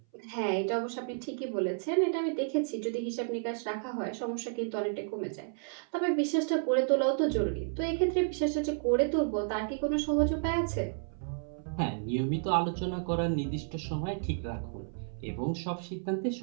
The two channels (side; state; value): left; silent; 57 dB below the other